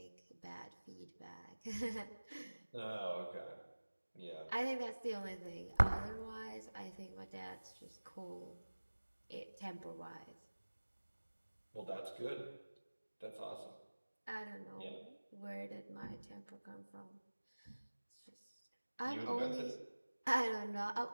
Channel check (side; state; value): both; inverted; correlation -1.00